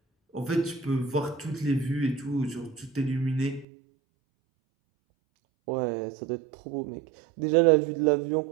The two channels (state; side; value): drops out; left; at 3.7 s